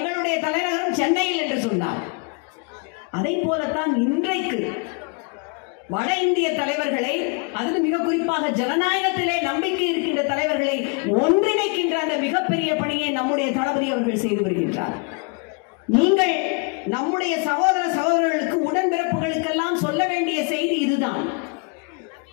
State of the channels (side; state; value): right; quieter; 33.3 dB